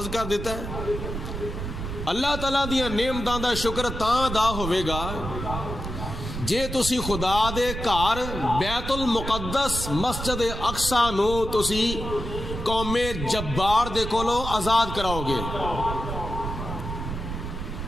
کر دیتا ہے. اللہ تعالیٰ دیاں نعمتاں دا شکر تاں ادا ہوے گا جے تسی خدا دے گھر بیت المقدس مسجد اقصی نو تسی قوم جبار دے کولوں آزاد کراؤ گے.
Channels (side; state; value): right; noise; rumble, 6 dB below the sound